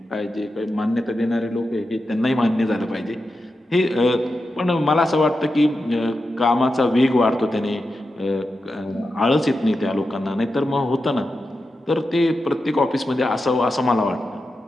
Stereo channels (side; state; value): both; normal; correlation 0.90